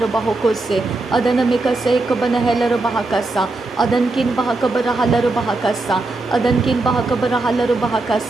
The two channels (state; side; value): quieter; left; 3.2 dB